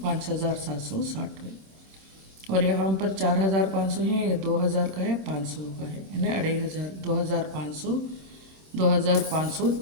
है। और यहाँ पर 4,500 है ये 2,000 का है 500 का है यानी 2,500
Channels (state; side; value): late; left; 26 ms